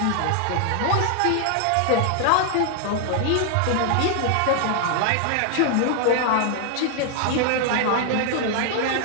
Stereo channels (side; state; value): both; different; correlation 0.00